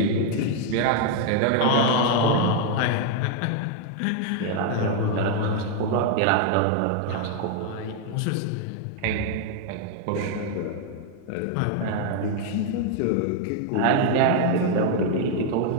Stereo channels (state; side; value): different; both; correlation 0.00